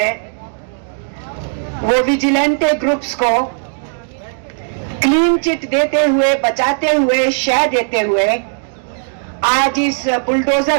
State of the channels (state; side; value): silent; left; digital silence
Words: वो विजिलेंटे ग्रुप्स को क्लीन चिट देते हुए, बचाते हुए, शय देते हुए आज इस